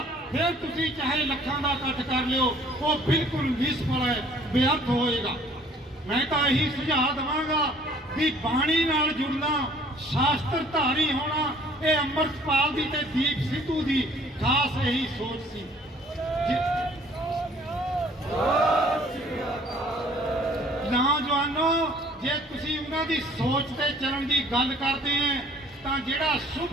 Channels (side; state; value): both; normal; correlation 0.56